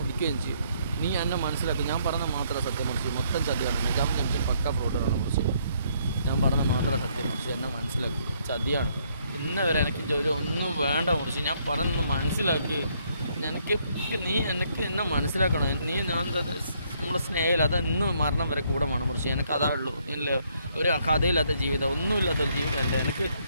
ചെയ്യും. നീ എന്നെ മനസ്സിലാക്കും. ഞാൻ പറഞ്ഞ മാത്രമേ സത്യം മുറിച്ച് മൊത്തം ചതിയാണ്. നജാബ് ജംഷീർ പക്കാ ഫ്രോഡുകളാണ് മുറിച്ച്. ഞാൻ പറഞ്ഞ മാത്രമേ സത്യം മുറിച്ച് എന്നെ മനസ്സിലാക്കി. ചതിയാണ്. ഇന്ന് വരെ എനിക്ക് ജോലി ഒന്നും വേണ്ട മുറിച്ച്. ഞാൻ പറഞ്ഞൊന്ന് മനസ്സിലാക്കി. എനിക്ക് നീ എനിക്ക് എന്നെ മനസ്സിലാക്കണം. നീ ഞാൻ നമ്മുടെ സ്നേഹമില്ല അതെന്നും മരണം വരെ കൂടെ വേണം മുറിച്ച്. എനിക്ക് അതാ ഉള്ളൂ. ഇല്ല ഒരു കഥയില്ലാത്ത ജീവിതം, ഒന്നുമില്ലാത്തൊരു ജീവിതം അല്ല എനിക്ക്.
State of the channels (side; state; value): both; inverted; correlation -0.70